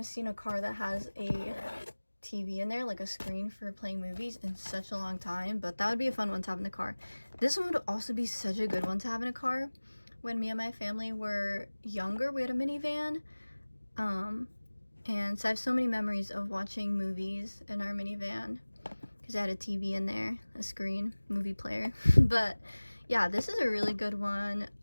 seen a car that has a TV in there, like a screen for playing movies, in such a long time, but that would be a fun one to have in the car. This one would also be such a good one to have in a car. When me and my family were younger, we had a minivan, and so I have so many memories of watching movies in our minivan because I had a TV in there, a screen, movie player. But yeah, this is a really good one.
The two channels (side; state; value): both; inverted; correlation -1.00